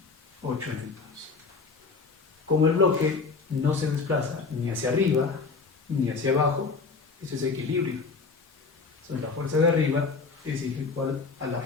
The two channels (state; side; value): quieter; right; 4.5 dB